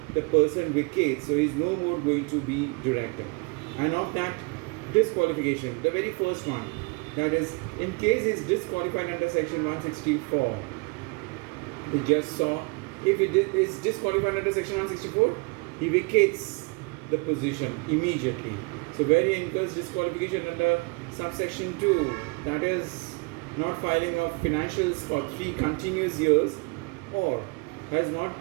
the person vacates, so he's no more going to be director. And of that disqualification, the very first one, that is, in case he's disqualified under section 164, we just saw, if he is disqualified under section 164, he vacates the position immediately. So where he incurs disqualification under subsection 2, that is not filing of financials for 3 continuous years, or has not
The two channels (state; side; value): quieter; left; 31.2 dB